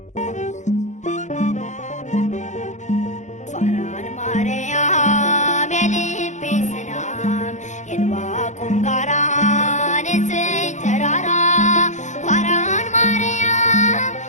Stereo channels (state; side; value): late; right; 0.35 ms